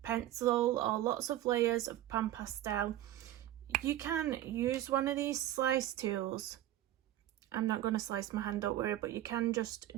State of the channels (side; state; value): left; quieter; 13.4 dB